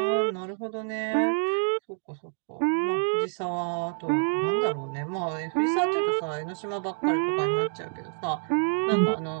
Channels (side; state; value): left; silent; 58 dB below the other